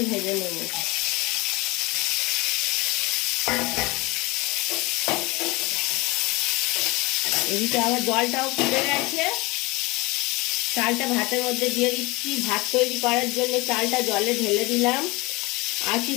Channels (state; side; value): quieter; right; 23.7 dB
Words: ভেজে নেব। এদিকে আবার জলটাও ফুটে গেছে। চালটা ভাতের মধ্যে দিয়ে দিচ্ছি। ভাত তৈরি করার জন্য চালটা জলে ঢেলে দিলাম।